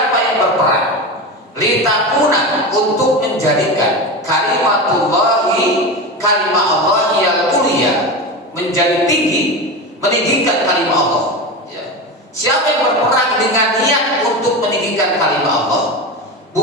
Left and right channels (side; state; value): both; normal; correlation 0.22